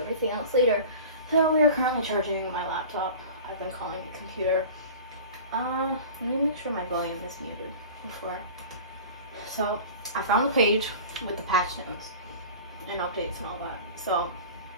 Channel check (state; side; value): inverted; both; correlation -0.38